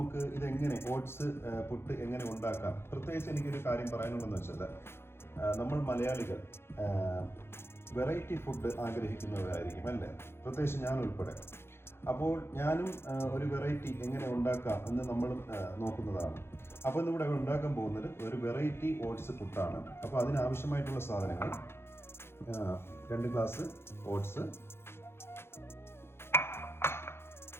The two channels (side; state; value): right; late; 0.12 ms